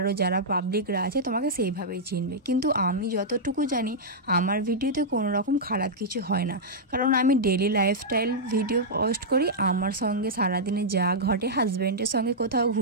যারা পাবলিকরা আছে তোমাকে সেইভাবেই চিনবে। কিন্তু আমি যতটুকু জানি আমার ভিডিওতে কোনো রকম খারাপ কিছু হয় না, কারণ আমি ডেলি লাইফস্টাইল ভিডিও পোস্ট করি। আমার সঙ্গে সারাদিনে যা ঘটে, হাজব্যান্ডের সঙ্গে কোথাও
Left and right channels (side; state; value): both; normal; correlation -0.09